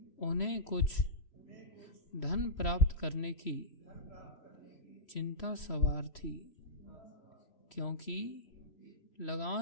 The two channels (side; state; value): right; late; 3.1 ms